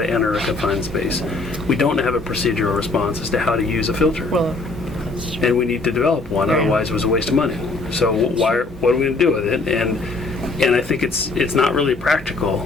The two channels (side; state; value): right; quieter; 3.4 dB